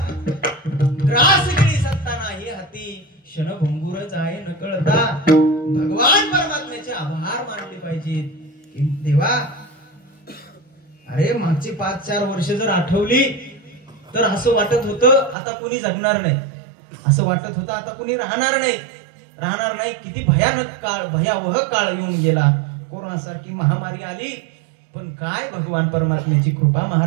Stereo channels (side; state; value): left; drops out; at 15.4 s